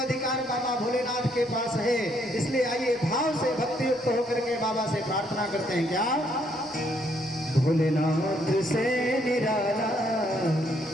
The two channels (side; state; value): both; normal; correlation 0.70